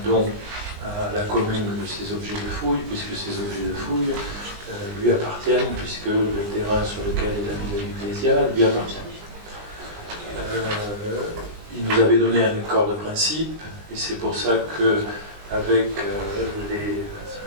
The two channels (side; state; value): left; late; 19 ms